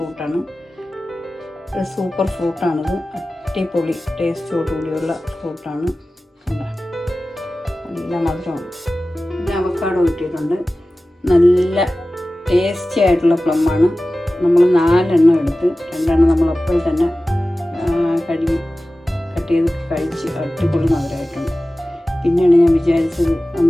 ഒരു സൂപ്പർ ഫ്രൂട്ടാണിത്, അടിപൊളി ടേസ്റ്റോടുകൂടിയുള്ള ഫ്രൂട്ടാണ്. നല്ല മധുരമാണ്. പിന്നെ അവക്കാഡോ കിട്ടിയിട്ടുണ്ട്, നല്ല ടേസ്റ്റി ആയിട്ടുള്ള പ്ലമ്മാണ്. നമ്മൾ 4 എണ്ണം എടുത്ത് 2 എണ്ണം നമ്മൾ അപ്പോൾ തന്നെ കട്ട് ചെയ്ത് കഴിച്ച് അടിപൊളി മധുരമായിട്ടുണ്ട്. പിന്നെയാണ് ഞാൻ വിചാരിച്ചത്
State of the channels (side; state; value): both; normal; correlation 0.96